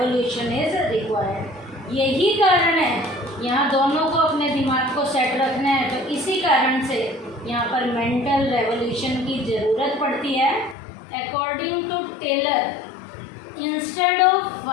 is required. यही कारण है, यहाँ दोनों को अपने दिमाग को सेट रखना है तो इसी कारण से यहाँ पर मेंटल रेवोल्यूशन की ज़रूरत पड़ती है। According to Taylor, instead of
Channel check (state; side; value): drops out; right; at 10.8 s